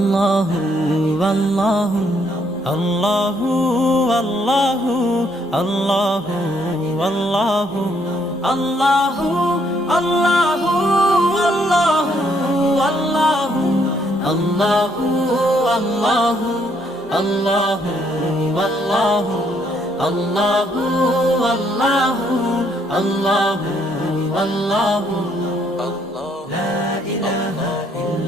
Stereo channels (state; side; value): normal; both; correlation 0.70